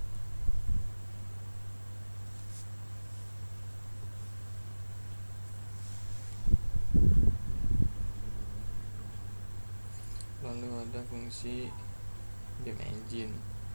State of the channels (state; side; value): inverted; both; correlation -1.00